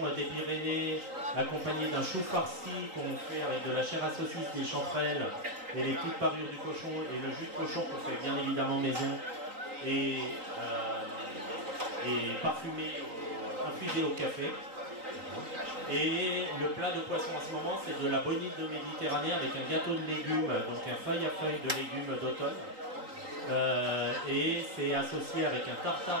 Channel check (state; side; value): late; left; 3.9 ms